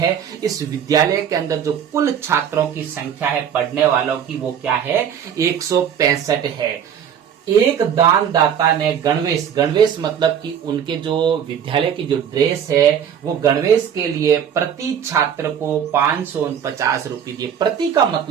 इस विद्यालय के अंदर जो कुल छात्रों की संख्या है पढ़ने वालों की, वो क्या है, 165 है। एक दानदाता ने गणवेश मतलब कि उनके जो विद्यालय की जो ड्रेस है, वो गणवेश के लिए प्रति छात्र को 549 रुपए दिए। प्रति का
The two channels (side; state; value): left; quieter; 8.5 dB